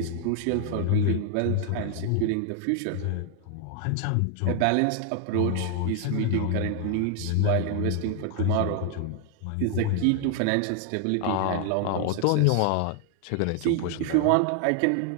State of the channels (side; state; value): both; different; correlation 0.00